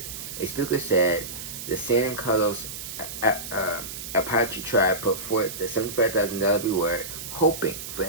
A speaker said the San Carlos Apache tribe put forth the $75,000 reward, hoping for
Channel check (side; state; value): right; noise; hiss, 9 dB below the sound